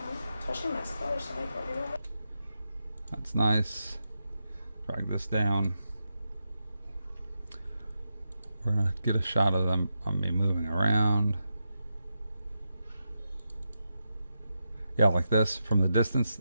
That's nice. Drag this down. We're gonna get a shot of them on me moving around. Yeah, like this from the distance.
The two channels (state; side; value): inverted; both; correlation -0.87